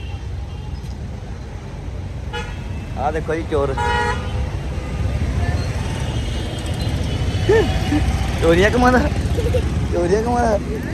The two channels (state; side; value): identical; both; correlation 1.00